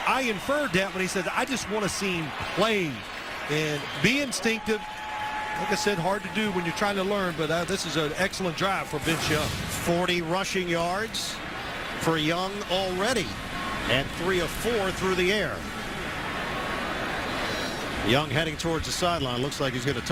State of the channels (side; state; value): both; identical; correlation 1.00